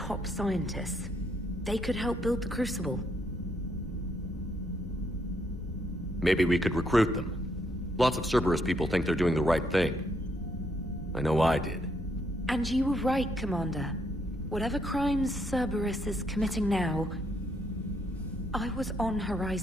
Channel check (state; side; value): normal; both; correlation 0.73